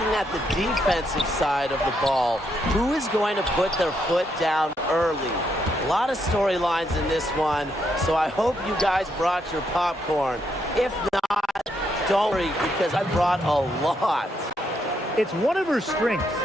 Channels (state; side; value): normal; both; correlation 0.77